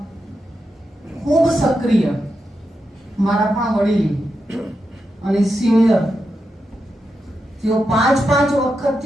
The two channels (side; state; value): both; normal; correlation 0.87